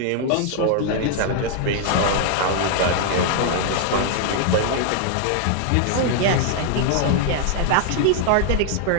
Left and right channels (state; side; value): different; both; correlation 0.00